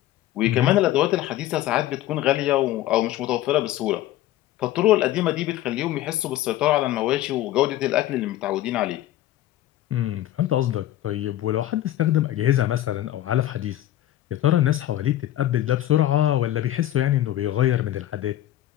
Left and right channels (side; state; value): right; quieter; 13.7 dB